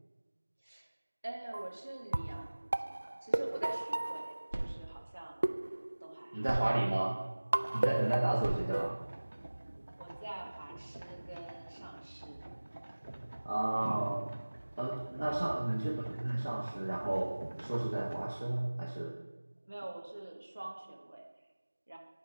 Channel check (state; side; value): inverted; both; correlation -1.00